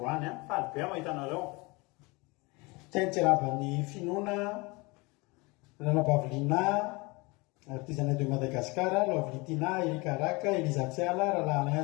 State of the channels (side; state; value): right; quieter; 25.9 dB